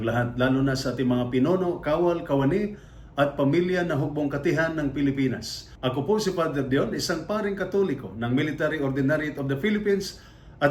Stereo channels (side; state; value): both; identical; correlation 1.00